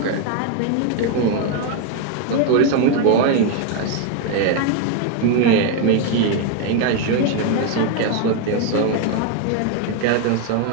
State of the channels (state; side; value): different; both; correlation 0.01